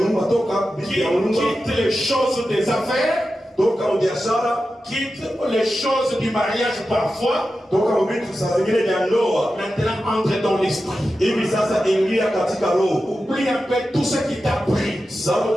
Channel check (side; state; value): both; normal; correlation 0.92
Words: toka vitu vya nyumba. Quitte les choses des affaires. Toka biashara, Quitte les choses du mariage parfois. toka vitu saa zingine vya ndoa. Maintenant entre dans l'esprit. Hivi sasa ingia katika roho. Oublie un peu tout ce qui t'a pris. Sababu